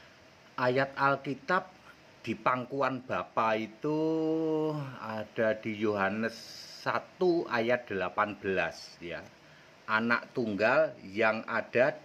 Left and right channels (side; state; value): both; identical; correlation 1.00